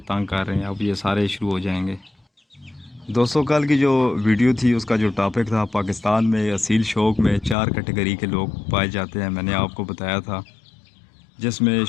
تنگ کر رہے ہیں، اب یہ سارے شروع ہو جائیں گے۔ دوستوں، کل کی جو ویڈیو تھی اس کا جو ٹاپک تھا، پاکستان میں اصیل شوق میں 4 کیٹیگری کے لوگ پائے جاتے ہیں، میں نے آپ کو بتایا تھا، جس میں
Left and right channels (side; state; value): right; drops out; at 7.6 s